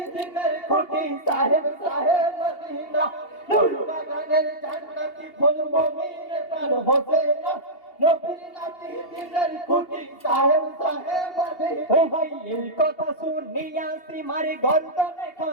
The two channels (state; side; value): late; right; 2.8 ms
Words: দিনের কুটি সাহেব সাহেব মদিনা। নূর বাগানের জান্নাতি ফুল মমিনের প্রাণ হোসেনা, নবীর নাতি দিনের কুটি সাহেব সাহেব মদিনা। ও ভাই এই কথা শুনিয়া সীমার গর্দনে